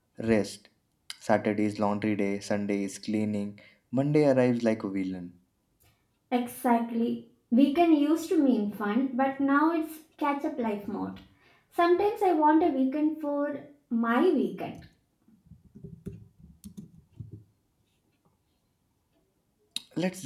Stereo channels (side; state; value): both; identical; correlation 1.00